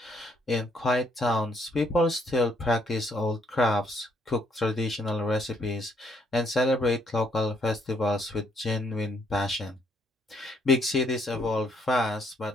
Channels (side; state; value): both; normal; correlation 0.70